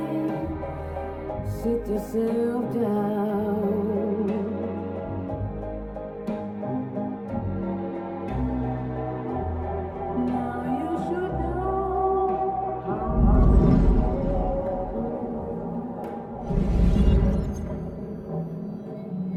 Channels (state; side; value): identical; both; correlation 1.00